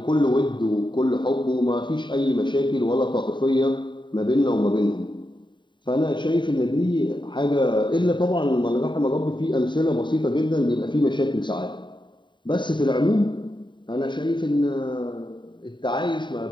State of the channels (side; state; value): right; late; 0.23 ms